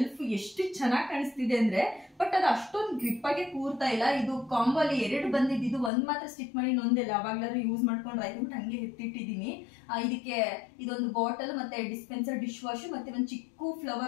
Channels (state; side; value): drops out; right; at 5.9 s